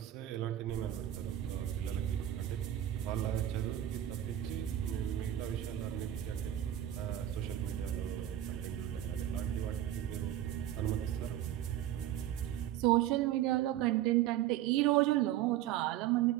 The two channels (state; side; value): quieter; left; 12.2 dB